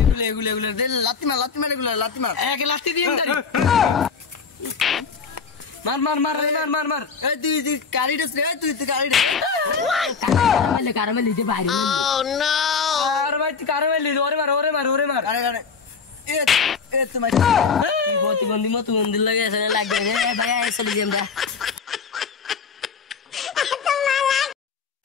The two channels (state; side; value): quieter; right; 5.5 dB